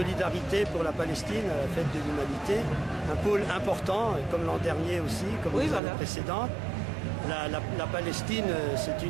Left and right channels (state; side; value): drops out; left; at 5.8 s